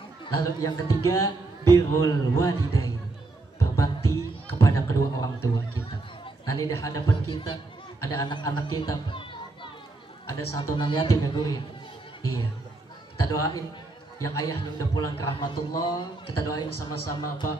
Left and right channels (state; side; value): quieter; left; 3.3 dB